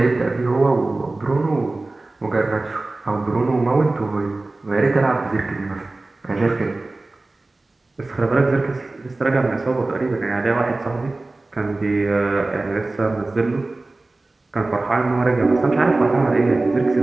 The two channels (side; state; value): left; quieter; 3.1 dB